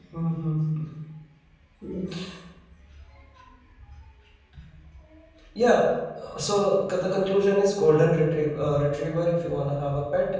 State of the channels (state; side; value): identical; both; correlation 1.00